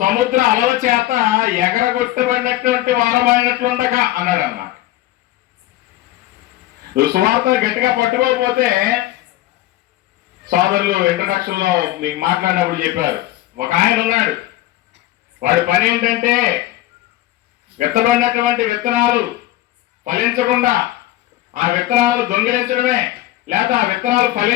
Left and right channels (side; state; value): right; quieter; 15.5 dB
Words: అలల చేత ఎగరగొట్టబడినటువంటి వారమైనట్లుండగా అన్నాడు అన్నమాట. నువ్వు సువార్తను గట్టిగా పట్టుకోకపోతే, సోదరులు ఇంట్రడక్షన్ లో మీకు మాట్లాడినప్పుడు చెప్పారు, ఒక ఆయన ఉన్నాడు, వాడి పని ఏంటంటే విత్తబడినటువంటి విత్తనాలు ఫలించకుండా ఆ విత్తనాలు దొంగిలించడమే, లేదా ఆ విత్తనాలు